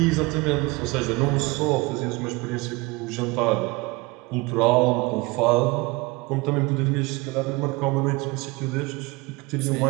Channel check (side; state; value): left; quieter; 24.5 dB